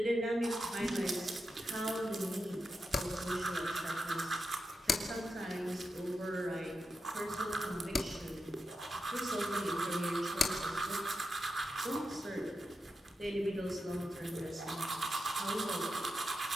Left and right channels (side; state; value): both; normal; correlation 0.88